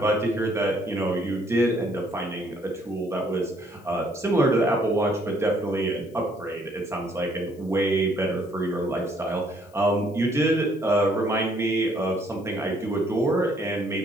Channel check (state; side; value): noise; left; hiss, 30 dB below the sound